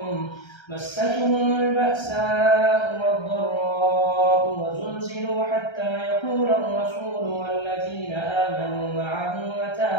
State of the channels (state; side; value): late; right; 1.3 ms